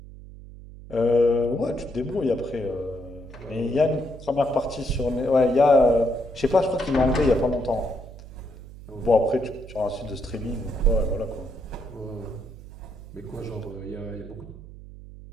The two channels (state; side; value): noise; right; hum, 16 dB below the sound